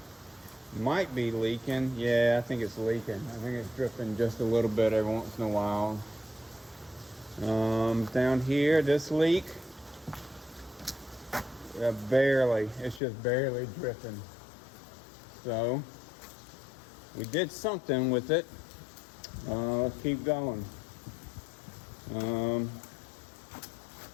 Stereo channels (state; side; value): drops out; right; at 13.0 s